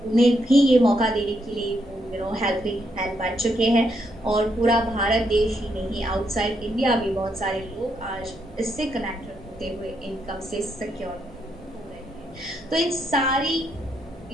उन्हें भी ये मौका देने के लिए वो हेल्पिंग हैंड बन चुके हैं। और पूरा भारत देश ही नहीं, आउटसाइड इंडिया भी बहुत सारे लोग आज इससे कनेक्टेड होते हुए इनकम से सिक्योर हो रहे हैं। तो इन सारी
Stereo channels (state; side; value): normal; both; correlation 0.77